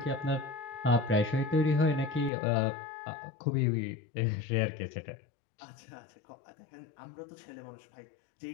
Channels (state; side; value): drops out; right; at 2.3 s